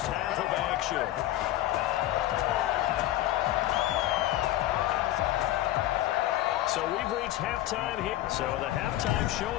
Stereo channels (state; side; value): quieter; right; 14.6 dB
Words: half of action. So we've reached halftime here. So the halftime show